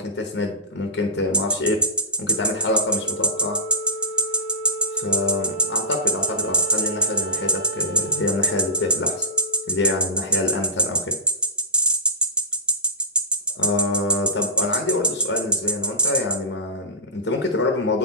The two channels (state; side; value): normal; both; correlation -0.19